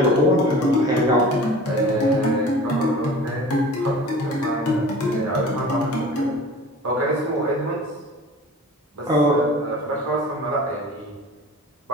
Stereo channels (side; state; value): both; normal; correlation 0.41